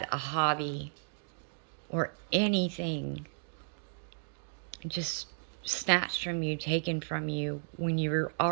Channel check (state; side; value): silent; left; digital silence